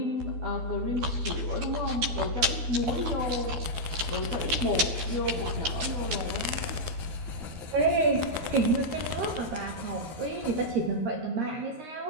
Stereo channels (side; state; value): left; late; 13 ms